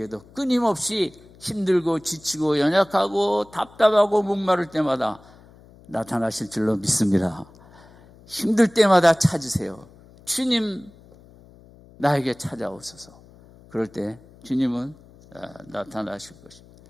끊임없이 힘들고 지치고 연약하고 답답하고 목마를 때마다 나타나실 줄로 믿습니다. 힘들 때마다 찾으세요. 주님 나에게 찾아오소서. 그럴 때 주님은 나타나실 것입니다.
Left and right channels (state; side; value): noise; left; hum, 25 dB below the sound